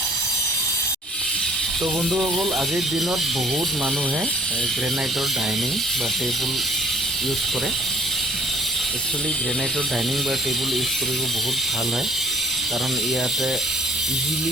তো বন্ধুসকল, আজিৰ দিনত বহুত মানুহে গ্ৰেনাইটৰ ডাইনিং বা টেবুল ইউজ কৰে। একচুৱেলি গ্ৰেনাইটৰ ডাইনিং বা টেবুল ইউজ কৰিব বহুত ভাল হয়, কাৰণ ইয়াতে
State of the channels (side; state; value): both; normal; correlation 0.54